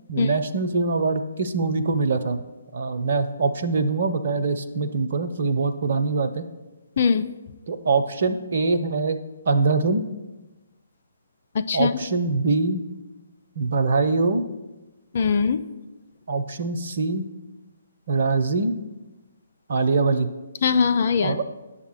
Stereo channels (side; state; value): both; inverted; correlation -0.67